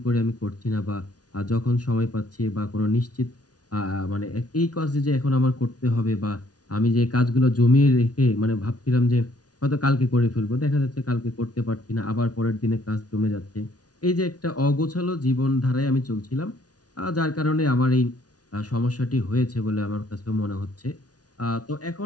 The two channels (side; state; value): right; late; 0.68 ms